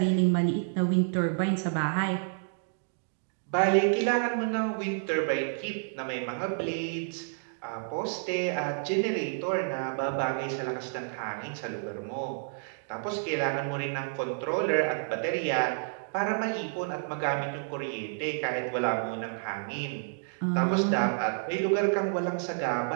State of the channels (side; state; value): left; silent; digital silence